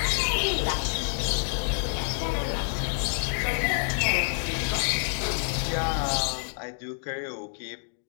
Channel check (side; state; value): right; silent; digital silence